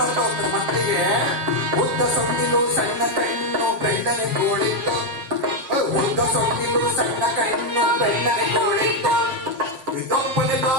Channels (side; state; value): left; late; 7.4 ms